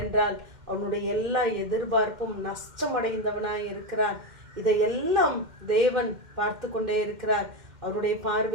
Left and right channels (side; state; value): left; late; 2.1 ms